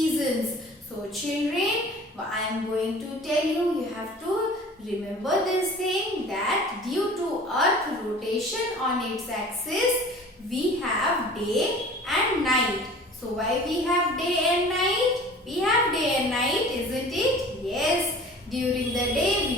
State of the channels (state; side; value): normal; both; correlation 0.44